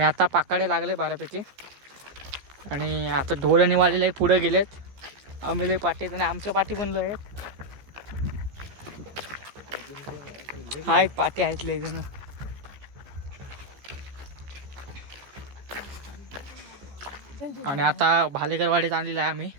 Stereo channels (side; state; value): left; late; 14 ms